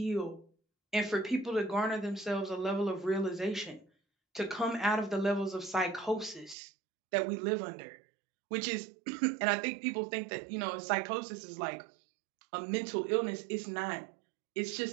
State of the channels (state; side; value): drops out; left; at 6.6 s